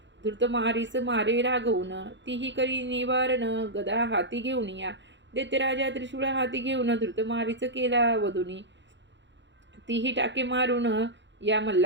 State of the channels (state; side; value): late; left; 0.53 ms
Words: धृतमारीस मारे रागवून तीही करी निवारण गदा हाती घेऊन या दैत्यराजा त्रिशूळ हाती घेऊन धृतमारीच केला वधुनी तीही टाके मारून या